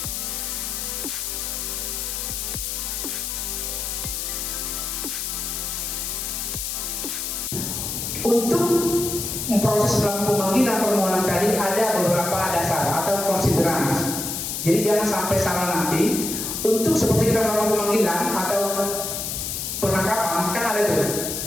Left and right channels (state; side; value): noise; left; hiss, 3 dB below the sound